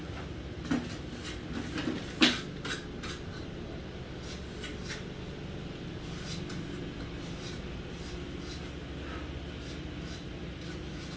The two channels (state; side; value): identical; both; correlation 1.00